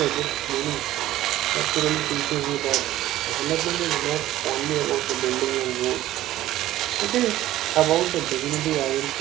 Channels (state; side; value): quieter; left; 14.5 dB